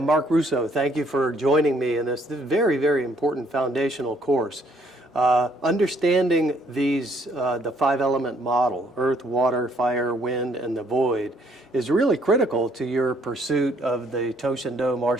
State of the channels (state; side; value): normal; both; correlation 0.66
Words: Mark Russo. Thank you for joining me in this very, very important foundational course. Understanding the five-element model, earth, water, fire, wind, and the void, is really critical to your pursuit of the Toshindo